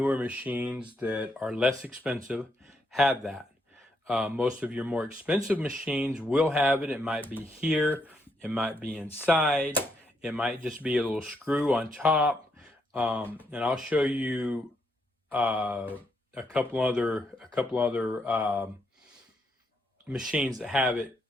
machines that are less expensive, have that. Most of your more expensive machines will have it. It might be here, it might be inside, it might just be a little screw on top. And I'll show you a couple other machines that have it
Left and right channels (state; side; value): normal; both; correlation 0.77